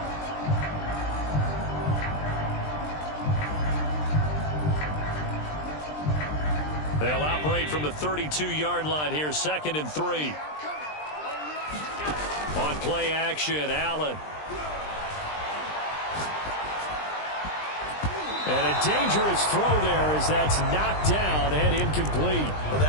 They'll operate from the 32-yard line here, 2nd and 3. On play action, Allen. And a dangerous throw there as that's knocked down and incomplete. Well,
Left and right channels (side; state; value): right; late; 20 ms